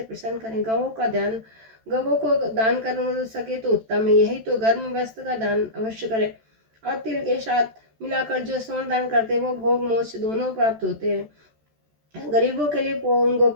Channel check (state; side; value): late; left; 13 ms